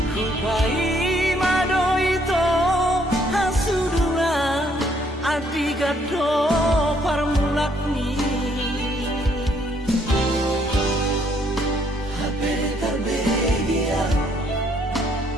kupai mado itu hasudungan adi gado parmulak ni HP terbegia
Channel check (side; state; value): both; normal; correlation 0.68